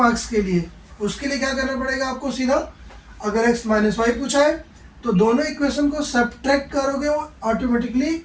के लिए उसके लिए क्या करना पड़ेगा आपको, सीधा अगर x माइनस वाई पूछा है तो दोनों इक्वेशन को सब्ट्रैक्ट करोगे वो ऑटोमेटिकली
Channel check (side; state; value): both; identical; correlation 1.00